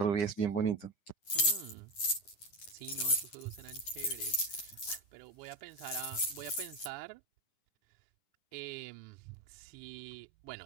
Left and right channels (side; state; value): right; late; 9.8 ms